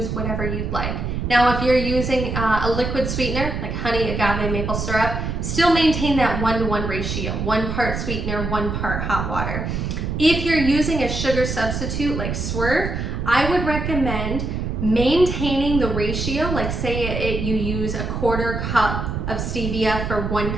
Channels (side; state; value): right; noise; rumble, 3 dB below the sound